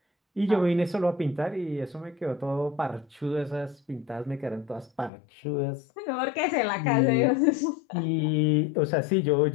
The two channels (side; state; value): right; drops out; at 5.1 s